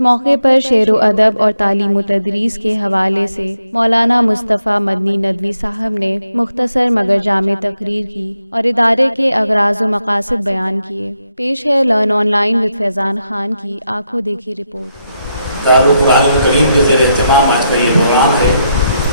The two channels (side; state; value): both; inverted; correlation -0.81